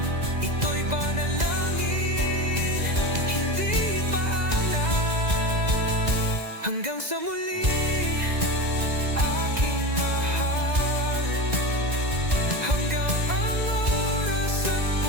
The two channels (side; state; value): left; late; 2.0 ms